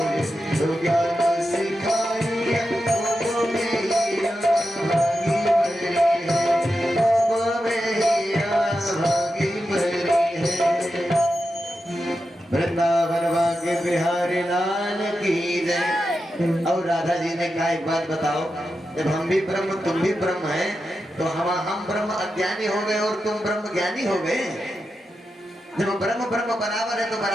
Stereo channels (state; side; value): normal; both; correlation 0.89